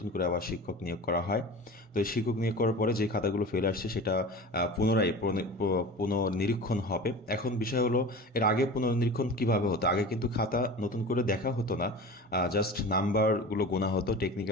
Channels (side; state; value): both; normal; correlation 0.35